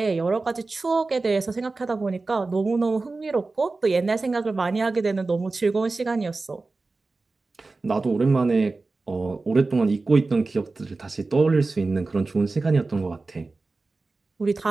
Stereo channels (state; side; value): quieter; left; 3.6 dB